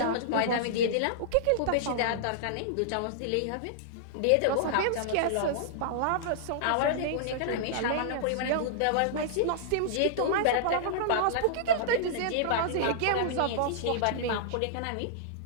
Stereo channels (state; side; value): different; both; correlation -0.02